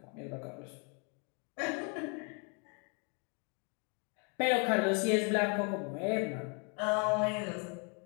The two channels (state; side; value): quieter; right; 36.1 dB